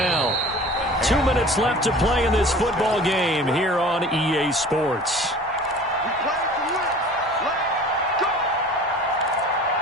2 minutes left to play in this football game here on EA Sports.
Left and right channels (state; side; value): normal; both; correlation 0.43